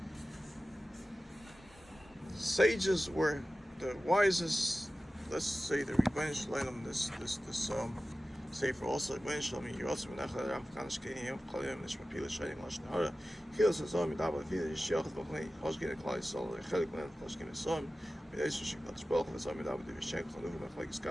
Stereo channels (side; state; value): both; normal; correlation 0.95